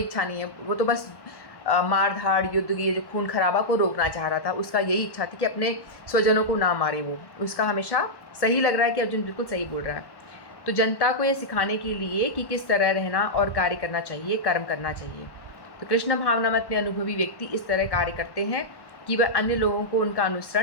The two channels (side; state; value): right; late; 1.1 ms